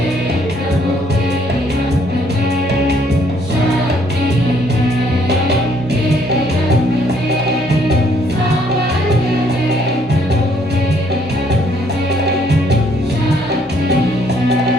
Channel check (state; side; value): normal; both; correlation 0.66